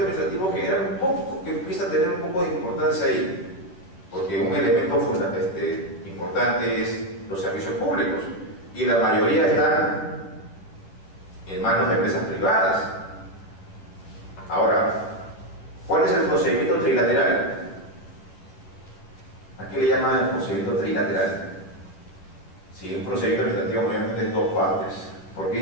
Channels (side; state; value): right; late; 11 ms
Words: administrativo genera un poco, que empieza a tener un poco de importancia ahí, porque un elemento importante es los servicios públicos, y la mayoría están en manos de empresas privadas. Ahora, ¿cuál es el procedimiento trilateral? ¿A qué le llaman el procedimiento trilateral? Si un procedimiento administrativo mayormente es dos partes. ¿Por qué